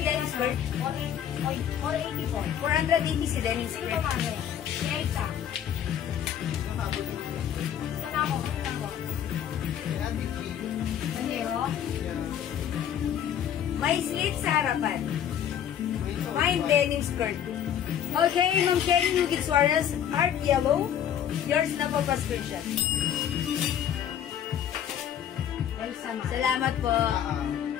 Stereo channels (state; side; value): quieter; right; 9.6 dB